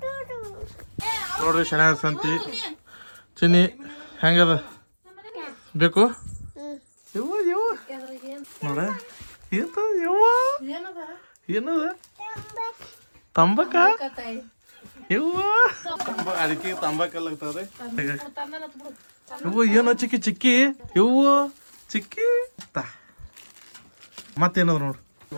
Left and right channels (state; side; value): inverted; both; correlation -1.00